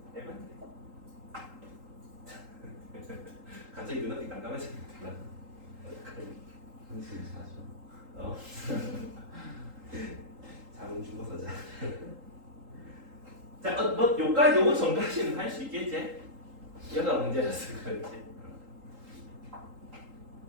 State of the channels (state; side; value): late; left; 3.8 ms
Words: 갑자기 눈앞이 깜깜해졌다. 한숨 자죠. 잠은 죽어서 자. 자, 뭐 요까지 요거 전까지는 할 수 있겠지? 얘가 문제라서 그렇지.